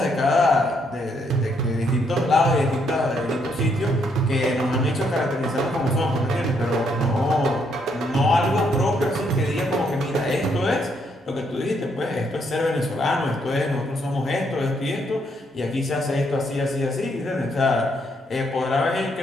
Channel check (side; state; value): both; normal; correlation 0.73